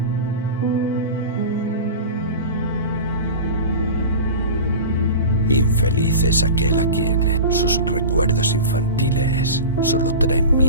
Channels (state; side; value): inverted; both; correlation -0.30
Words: Infeliz es aquel a quien sus recuerdos infantiles solo traen